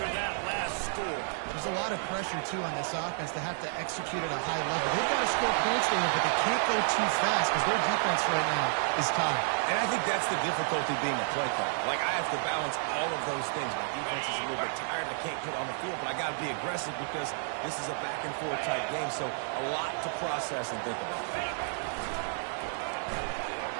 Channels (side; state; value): left; silent; 57 dB below the other